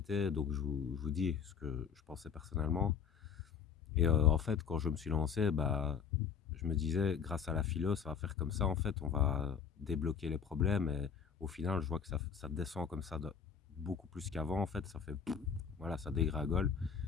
Donc je vous dis ce que je pensais personnellement. Et en fait, quand je me suis lancé, bah, je me disais, grâce à la philo, ça va faire comme ça. En fait, on va débloquer les problèmes. Et au final, je vois que ça descend comme ça beaucoup plus qu'avant. En fait, ça fait, voilà, ça dégringole.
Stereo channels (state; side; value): quieter; right; 7.0 dB